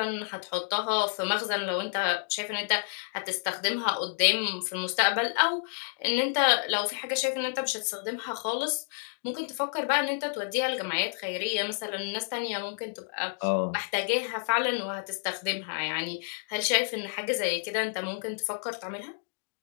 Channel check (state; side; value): silent; right; digital silence